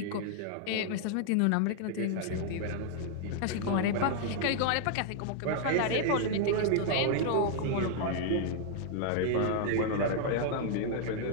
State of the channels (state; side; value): different; both; correlation 0.00